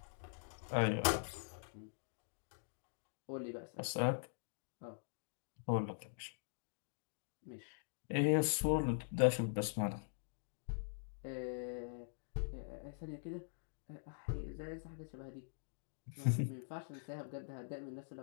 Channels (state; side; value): silent; right; digital silence